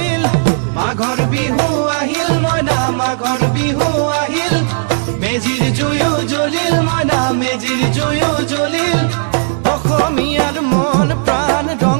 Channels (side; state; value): left; silent; 67 dB below the other